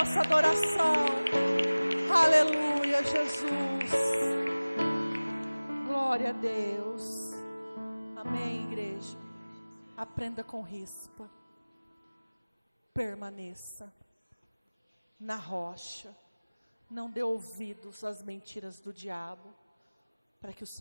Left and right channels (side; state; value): both; inverted; correlation -1.00